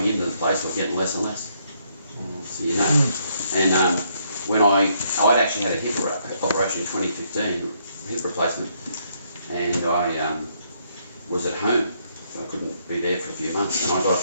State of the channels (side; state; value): both; inverted; correlation -0.72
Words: into the place were getting less and less. So you know. And when I'd actually had a hip operation in 2015, hip replacement, and I was at home, so I couldn't be there for a few months, and I got a